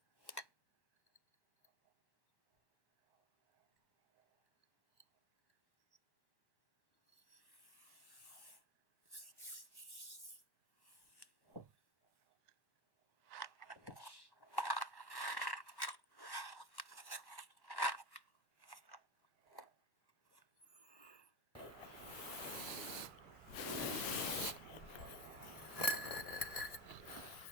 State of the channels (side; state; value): right; late; 1.1 ms